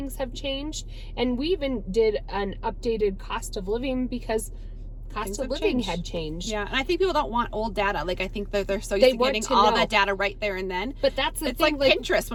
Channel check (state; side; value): identical; both; correlation 1.00